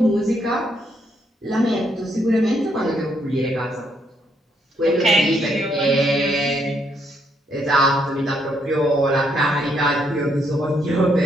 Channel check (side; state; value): both; normal; correlation 0.74